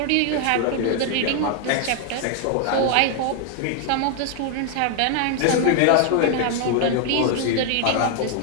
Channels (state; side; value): different; both; correlation 0.00